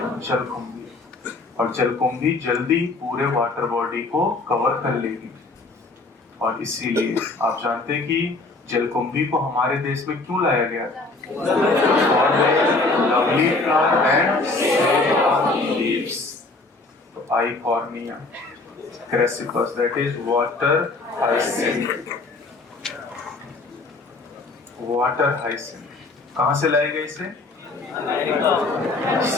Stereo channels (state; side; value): quieter; right; 3.4 dB